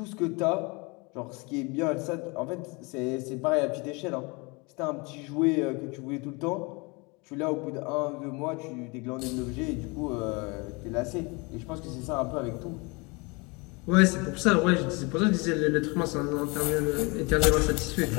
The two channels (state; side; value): quieter; right; 28.3 dB